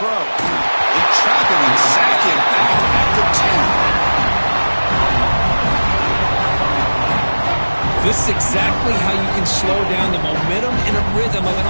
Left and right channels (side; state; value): both; inverted; correlation -1.00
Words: They trap him and sack him back at the 10. This is exactly how you can slow down the momentum and a rhythm of an